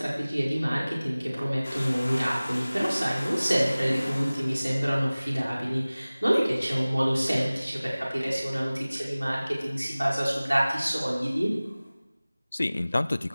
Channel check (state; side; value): inverted; both; correlation -0.99